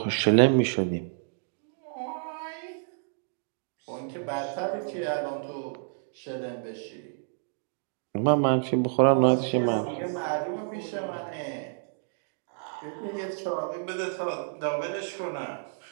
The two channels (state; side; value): silent; left; digital silence